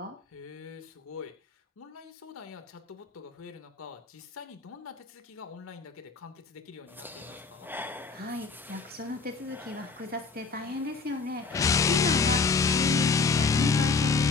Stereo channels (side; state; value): right; quieter; 4.6 dB